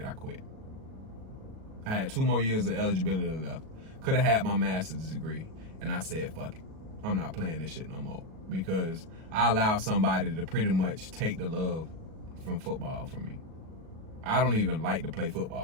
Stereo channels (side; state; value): left; late; 37 ms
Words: I quit. I had 2 more years of eligibility left. Could have had my master's degree. And I said, fuck it. I'm not playing this shit no more. Because I allowed somebody to pretty much take the love from football from me. I don't even like to play